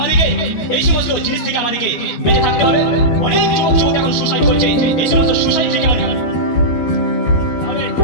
এই সমস্ত জিনিস থেকে আমাদেরকে বেঁচে থাকতে হবে। অনেক যুবক যুবতী এখন সুসাইড করছে, এই সমস্ত সুসাইড থেকে আমাদেরকে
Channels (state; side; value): late; right; 12 ms